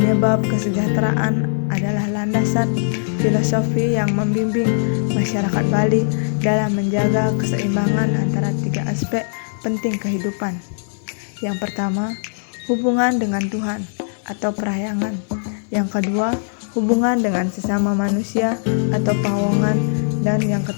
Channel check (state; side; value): silent; right; digital silence